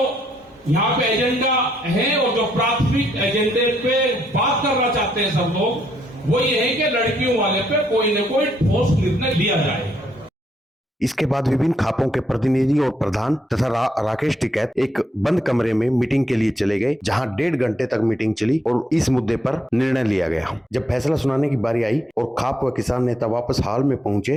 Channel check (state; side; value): normal; both; correlation 0.75